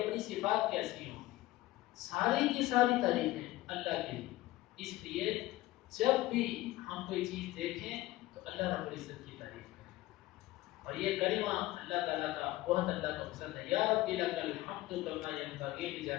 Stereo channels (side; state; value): right; quieter; 17.5 dB